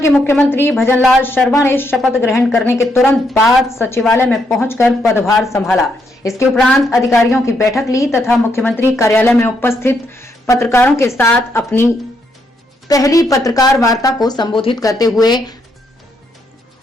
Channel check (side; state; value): both; normal; correlation 0.77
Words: मुख्यमंत्री भजनलाल शर्मा ने शपथ ग्रहण करने के तुरंत बाद सचिवालय में पहुंचकर पदभार संभाला। इसके उपरांत अधिकारियों की बैठक ली तथा मुख्यमंत्री कार्यालय में उपस्थित पत्रकारों के साथ अपनी पहली पत्रकार वार्ता को संबोधित करते हुए